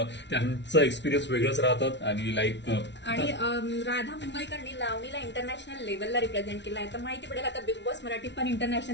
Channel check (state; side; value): late; right; 0.51 ms